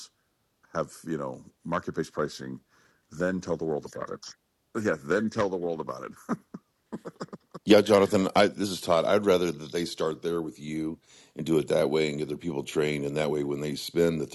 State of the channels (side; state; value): both; identical; correlation 1.00